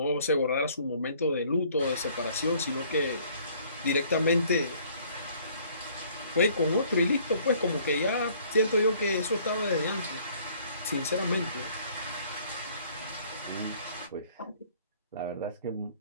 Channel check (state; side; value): inverted; both; correlation -0.58